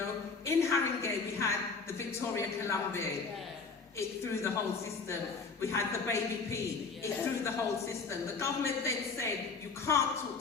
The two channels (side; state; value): right; quieter; 4.7 dB